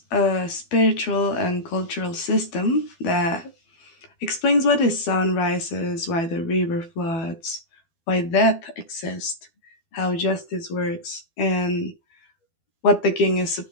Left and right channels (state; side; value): late; right; 12 ms